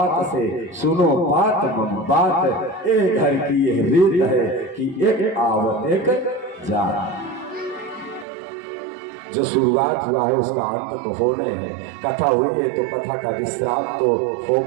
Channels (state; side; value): drops out; left; at 8.2 s